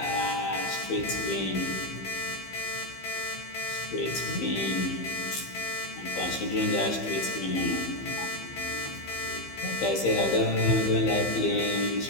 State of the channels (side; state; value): right; late; 15 ms